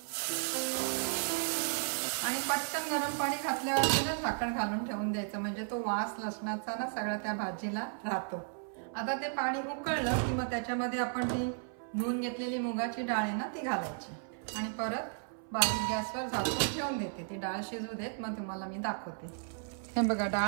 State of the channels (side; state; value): left; silent; 55 dB below the other